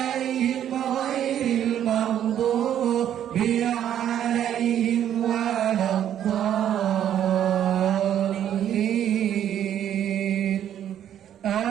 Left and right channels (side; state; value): left; quieter; 10.4 dB